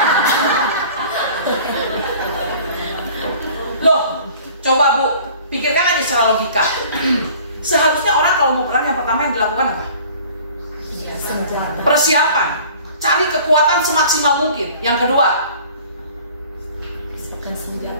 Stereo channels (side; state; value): both; inverted; correlation -0.48